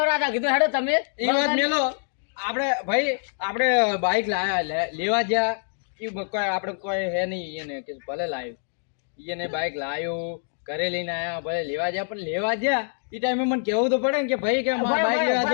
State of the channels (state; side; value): silent; right; digital silence